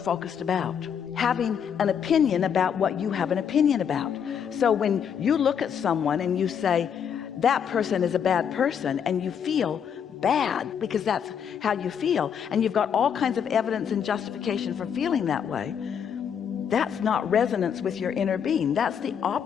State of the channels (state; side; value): quieter; right; 7.8 dB